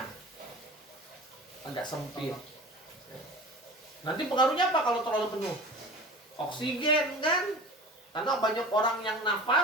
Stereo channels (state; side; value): normal; both; correlation 0.38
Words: Agak sempit. Nanti pengaruhnya apa kalau terlalu penuh? Oksigen kan? Karena banyak orang yang